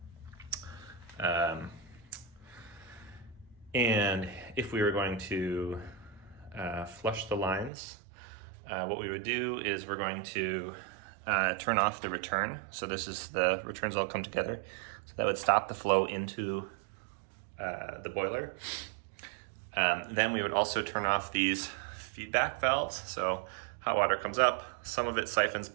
And if we were going to flush the lines, what we would do is we're going to turn off the return. So this is the returns all come together. So that would stop the flow into the boiler. Then we would also turn off these feedback valves. So hot water comes up, some of it siphons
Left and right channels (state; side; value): drops out; left; at 7.7 s